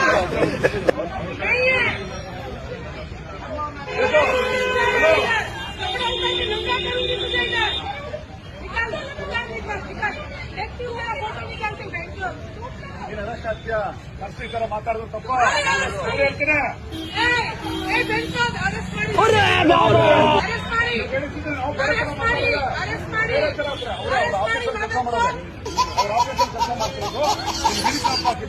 ತರ ಮಾತಾಡೋದು ತಪ್ಪ ಹೇಳ್ತೀನಿ.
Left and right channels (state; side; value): identical; both; correlation 1.00